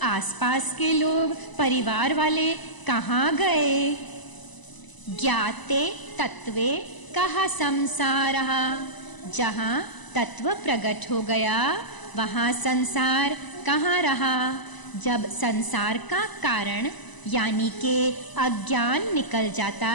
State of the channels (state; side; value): late; right; 1.0 ms